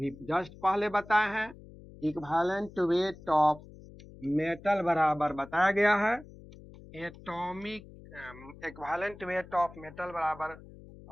जस्ट पहले बताए हैं, इक्विवेलेंट वेट ऑफ मेटल बराबर बताया गया है atomic equivalent weight of metal बराबर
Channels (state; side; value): noise; left; hum, 19 dB below the sound